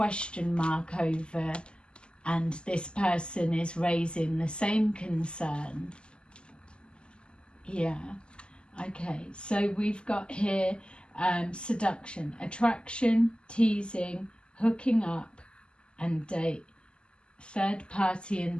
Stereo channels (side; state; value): right; late; 0.050 ms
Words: mark over, and this person is raising the same concern. Yeah, okay, so we've got here seduction, attraction, teasing, hooking up, and date, third party, and